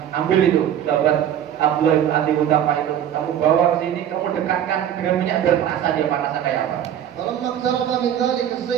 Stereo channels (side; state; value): left; quieter; 10.2 dB